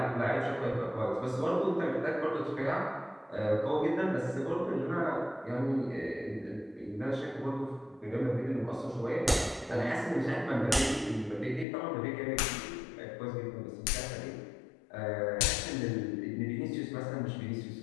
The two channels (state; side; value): drops out; right; at 11.7 s